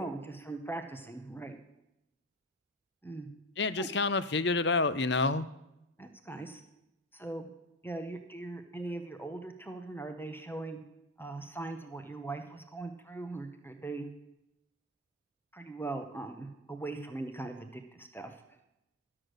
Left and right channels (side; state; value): both; normal; correlation 0.15